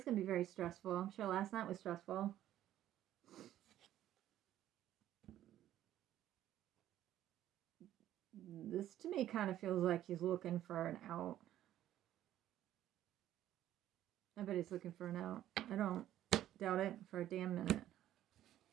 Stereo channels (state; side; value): quieter; left; 12.6 dB